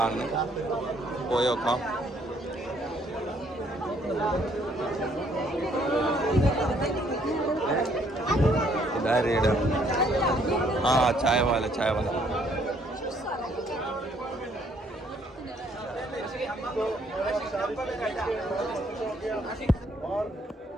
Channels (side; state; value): both; normal; correlation 0.66